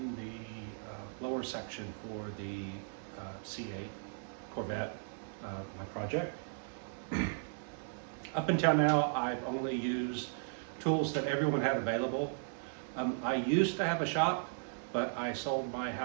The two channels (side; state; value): left; silent; 54 dB below the other